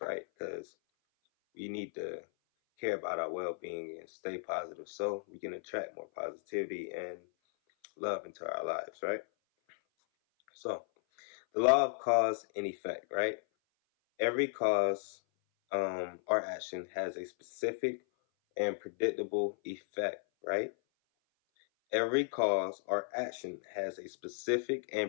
right? Because we need to care about our well-being and stay positive so we can attract more positivity and love into our lives, right? So the law of cause and effect, right? Every cause or action has a specific and predictable effect, right? Every cause or action has a specific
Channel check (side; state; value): right; silent; 54 dB below the other